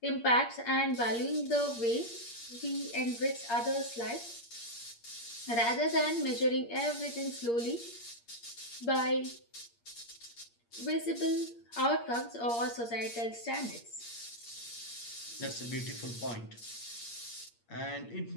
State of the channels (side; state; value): right; late; 8.6 ms